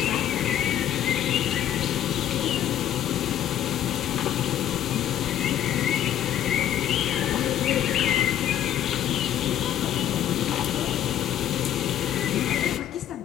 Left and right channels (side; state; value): right; quieter; 11.2 dB